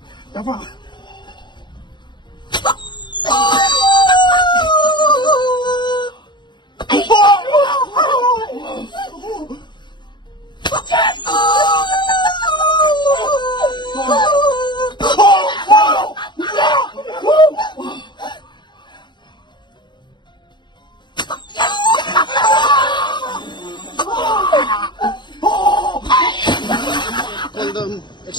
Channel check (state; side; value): late; right; 0.22 ms